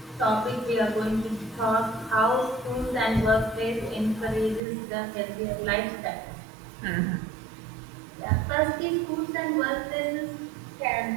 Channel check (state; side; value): drops out; left; at 4.6 s